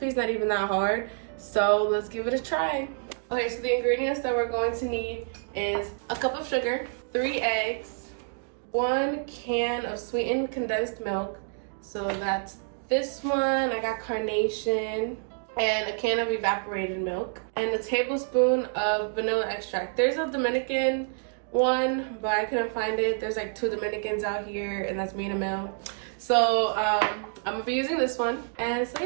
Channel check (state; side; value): silent; left; 59 dB below the other